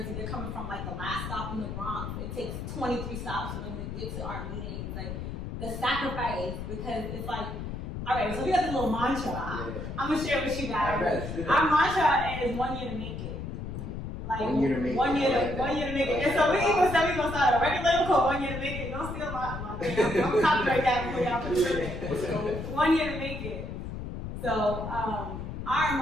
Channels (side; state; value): left; noise; rumble, 6 dB below the sound